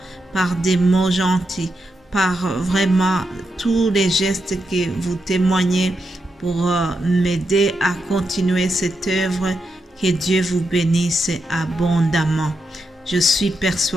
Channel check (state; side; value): normal; both; correlation 0.85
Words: par des mots gentils, par vraiment tous les gestes que vous témoignez pour m'aider à continuer cette œuvre. Que Dieu vous bénisse abondamment. Je suis